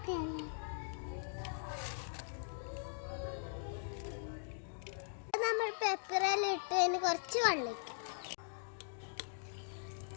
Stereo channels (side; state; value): right; silent; digital silence